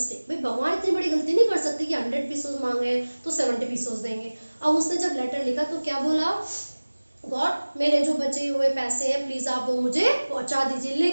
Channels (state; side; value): inverted; both; correlation -1.00